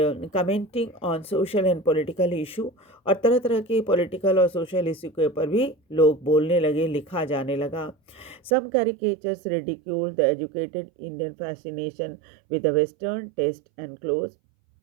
commenting on social and political issue, और तरह तरह के पॉलिटिकल और सोशल इशू के ऊपर भी लोग बोलने लगे, लिखा जाने लगा। Some caricatures ridiculed the educated Indian fascination with the western taste and clothes.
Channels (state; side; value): drops out; left; at 8.6 s